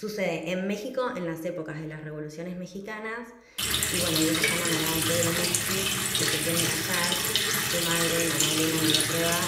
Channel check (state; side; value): identical; both; correlation 1.00